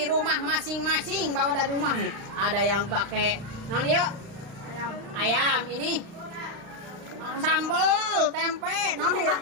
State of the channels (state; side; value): late; left; 36 ms